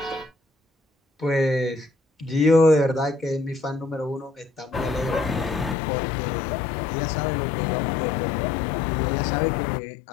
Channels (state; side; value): drops out; right; at 5.8 s